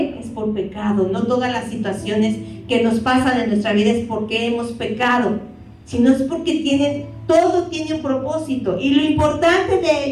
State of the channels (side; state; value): both; identical; correlation 1.00